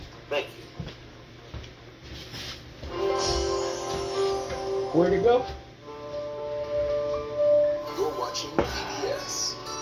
Thank you. Where'd it go? You're watching PBS.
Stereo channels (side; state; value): both; identical; correlation 1.00